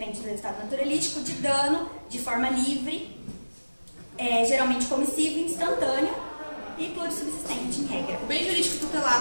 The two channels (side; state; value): both; inverted; correlation -1.00